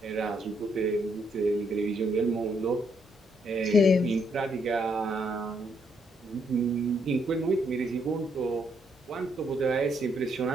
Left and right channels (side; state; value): both; normal; correlation 0.74